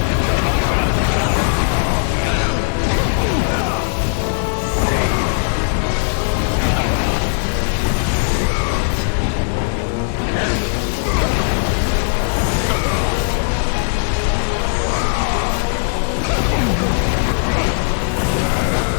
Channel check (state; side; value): silent; right; digital silence